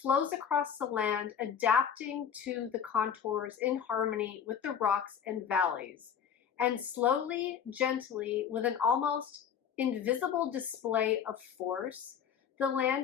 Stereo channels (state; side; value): quieter; right; 8.0 dB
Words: across the land, adapting to the contours in harmony with the rocks and valleys. And slowly, gently, with an almost invisible display of force, the